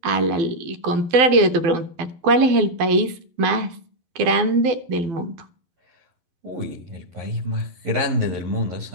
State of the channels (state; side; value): late; left; 12 ms